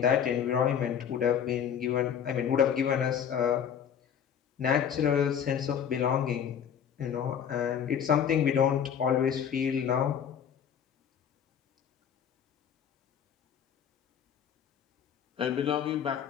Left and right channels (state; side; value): quieter; right; 8.3 dB